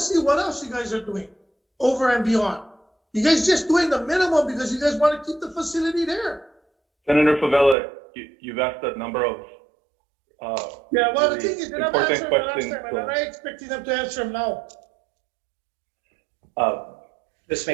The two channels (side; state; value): left; drops out; at 7.8 s